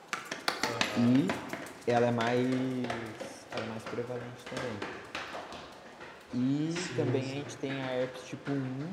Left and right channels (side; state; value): both; identical; correlation 1.00